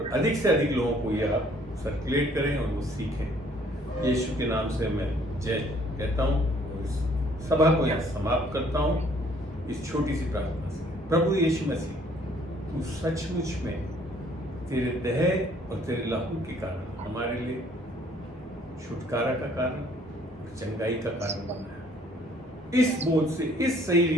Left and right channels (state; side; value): normal; both; correlation 0.61